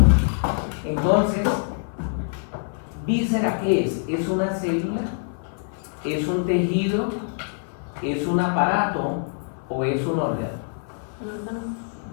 entonces, ¿víscera qué es? ¿Es una célula? ¿Es un tejido? ¿Es un aparato? ¿O es un órgano?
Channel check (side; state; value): right; silent; 58 dB below the other